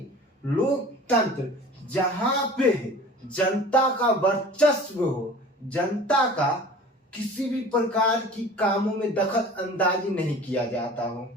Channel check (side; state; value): both; normal; correlation 0.42